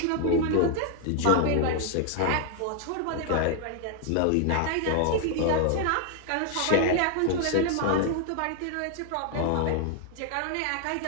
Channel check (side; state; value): both; different; correlation 0.00